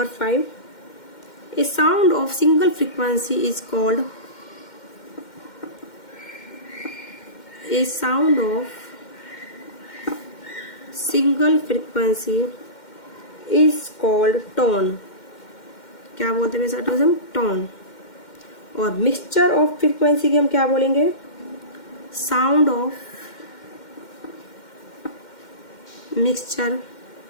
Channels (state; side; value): late; right; 2.1 ms